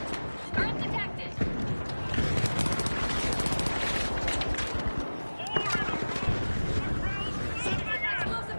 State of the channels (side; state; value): both; inverted; correlation -1.00